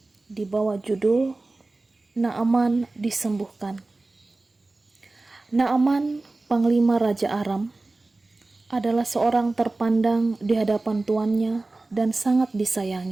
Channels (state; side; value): quieter; left; 3.2 dB